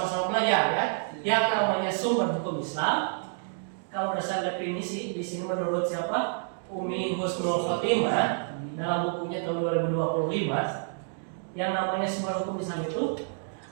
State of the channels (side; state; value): left; silent; digital silence